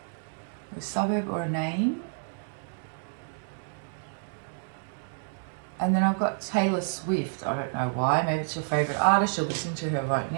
A suburb or a name. And then I've got Taylor Swift. I don't know why. Maybe it's your favourite artist. You're listening to her right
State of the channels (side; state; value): left; silent; 58 dB below the other